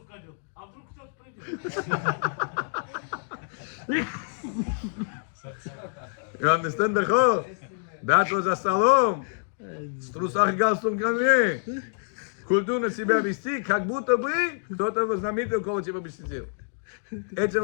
одел? А вдруг кто-то придет? You understand the whole? That was за столом. С трусах и галстуком ко мне. Культурно себя вести, как будто бы кто-то знаменитый около тебя бы сидел.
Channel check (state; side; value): silent; right; digital silence